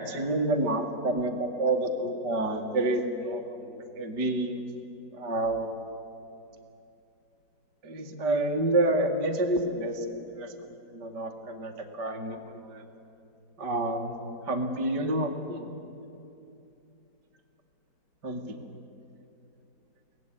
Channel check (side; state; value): left; late; 5.1 ms